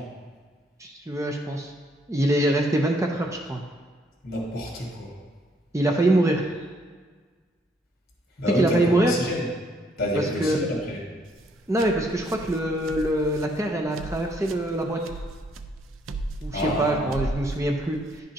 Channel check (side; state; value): both; normal; correlation 0.69